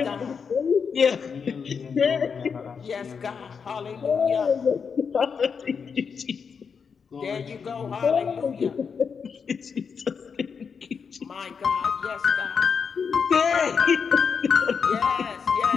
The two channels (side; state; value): right; quieter; 6.1 dB